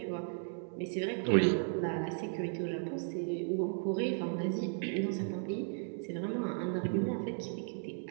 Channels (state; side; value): silent; left; 54 dB below the other